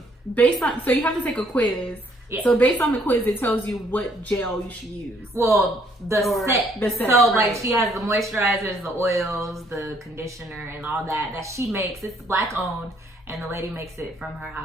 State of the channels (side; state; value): both; normal; correlation 0.66